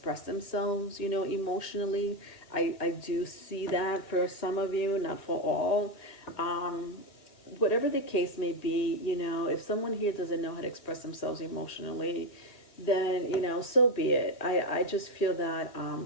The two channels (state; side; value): late; right; 2.0 ms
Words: themselves, emotionally. I do see that for some of you, not for all. Whatever the case may be, if someone here doesn't know how to express themselves emotionally, then, so be it. I just feel that,